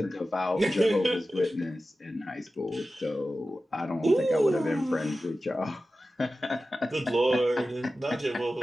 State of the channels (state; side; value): normal; both; correlation 0.94